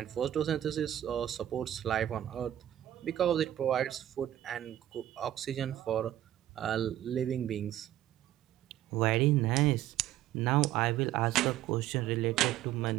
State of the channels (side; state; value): left; quieter; 12.6 dB